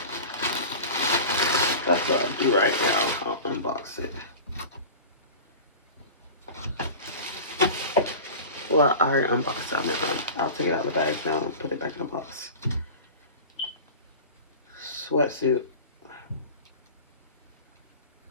that's what I'll do right now. I'll unbox it. Well, I already unboxed it. I'll take it out of the bag now and put it back in the box. Sweatsuit.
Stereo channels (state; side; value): inverted; both; correlation -0.35